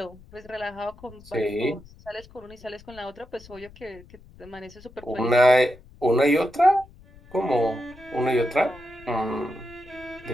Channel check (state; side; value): noise; left; rumble, 23 dB below the sound